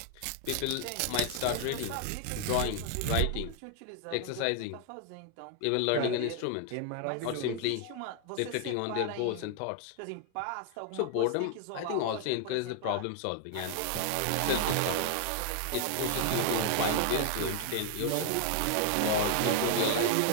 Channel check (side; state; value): both; different; correlation 0.00